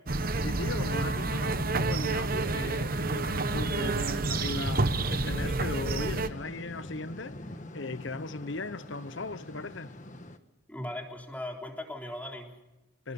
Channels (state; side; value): normal; both; correlation 0.48